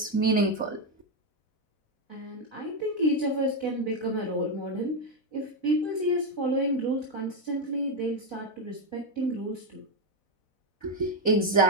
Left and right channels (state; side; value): late; right; 4.0 ms